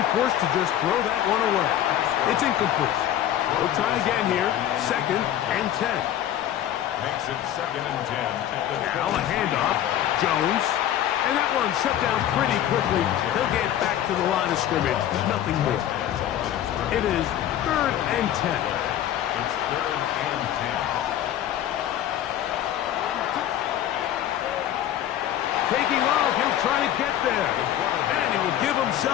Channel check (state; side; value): quieter; right; 11.5 dB